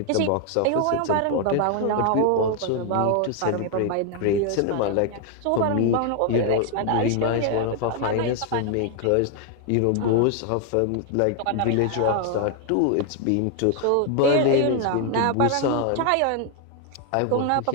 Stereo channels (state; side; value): different; both; correlation 0.00